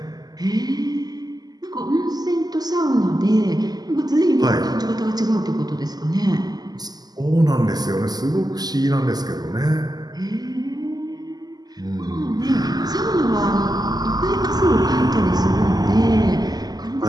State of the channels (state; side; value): late; left; 0.20 ms